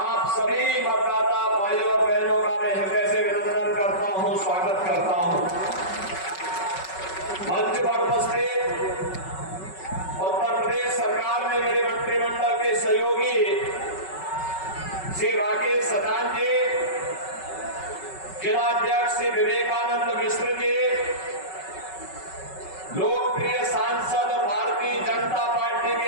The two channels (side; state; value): right; late; 5.3 ms